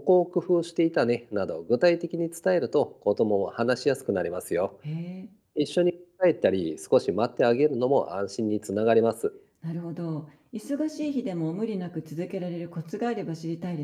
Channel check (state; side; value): identical; both; correlation 1.00